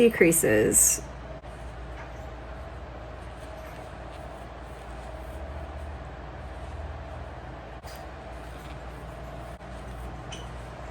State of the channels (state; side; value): identical; both; correlation 1.00